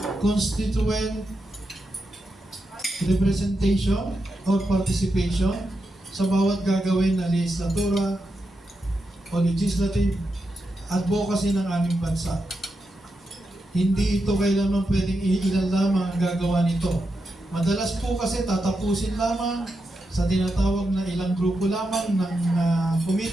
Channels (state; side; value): normal; both; correlation 0.86